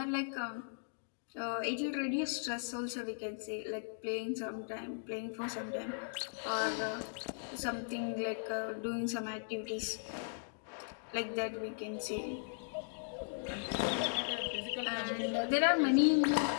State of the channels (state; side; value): silent; right; digital silence